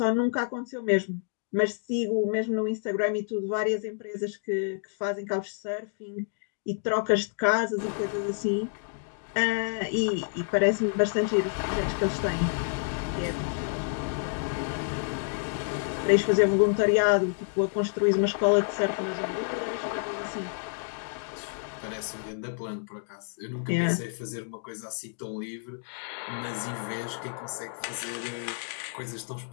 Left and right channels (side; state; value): right; silent; digital silence